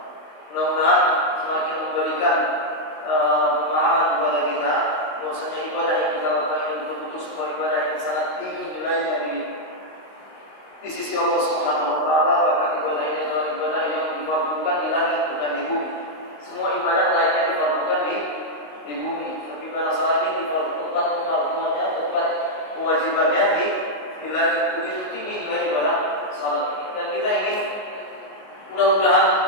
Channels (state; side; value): late; right; 19 ms